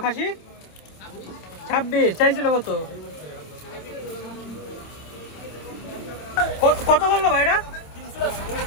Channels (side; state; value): right; late; 27 ms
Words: খাসি? 26 চাইছিল কত? কত বললো ভাই এটা?